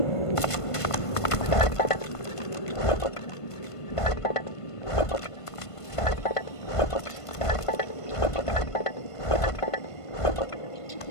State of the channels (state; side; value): late; right; 1.5 ms